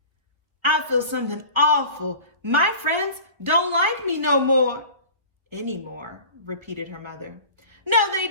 I feel something awful. My friends don't like me no more. Anymore, repeated her mother. No, they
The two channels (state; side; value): late; left; 1.4 ms